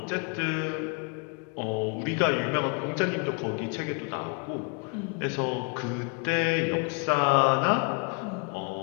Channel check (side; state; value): right; quieter; 35.5 dB